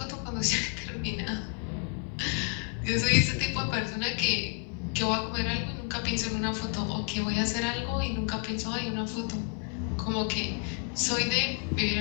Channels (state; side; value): quieter; right; 37.0 dB